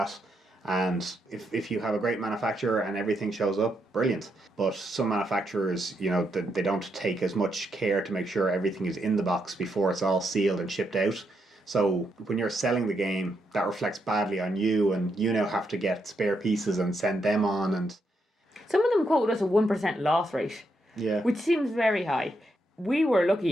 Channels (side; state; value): both; normal; correlation 0.80